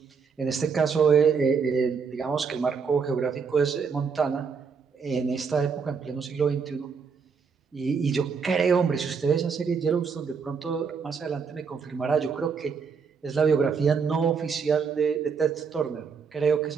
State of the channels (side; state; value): left; quieter; 5.8 dB